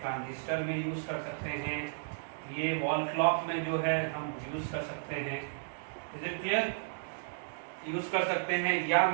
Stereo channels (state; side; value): silent; left; digital silence